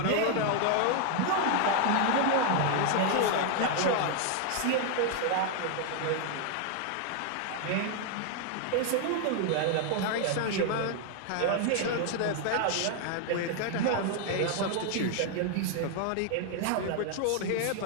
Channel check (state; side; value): different; both; correlation 0.00